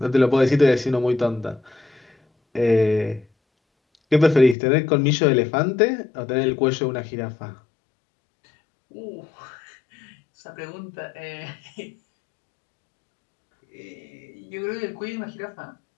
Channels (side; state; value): right; drops out; at 4.5 s